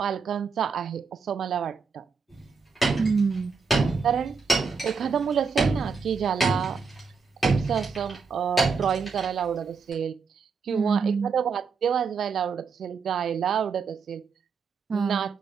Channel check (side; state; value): left; quieter; 5.3 dB